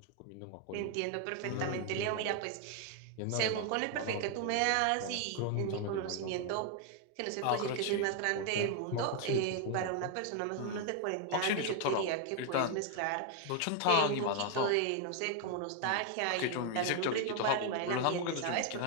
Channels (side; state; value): both; different; correlation 0.01